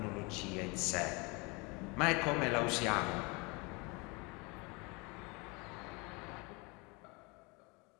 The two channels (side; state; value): right; quieter; 28.4 dB